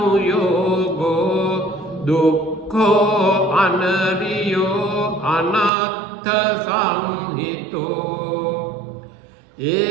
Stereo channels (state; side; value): drops out; left; at 5.7 s